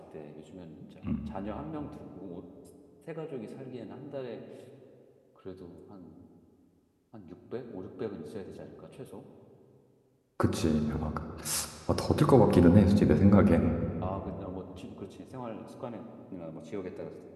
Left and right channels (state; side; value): identical; both; correlation 1.00